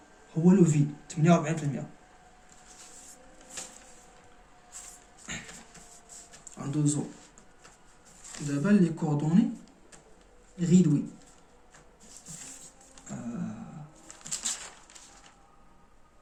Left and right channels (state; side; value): identical; both; correlation 1.00